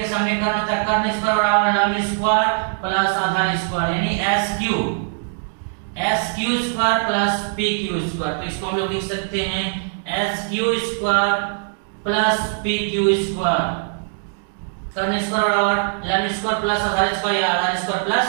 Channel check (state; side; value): silent; left; digital silence